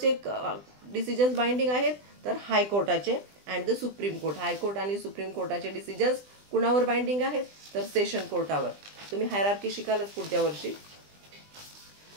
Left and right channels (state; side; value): late; left; 20 ms